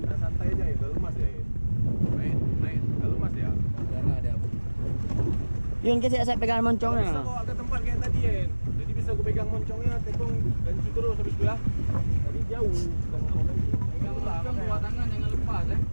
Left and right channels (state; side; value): inverted; both; correlation -1.00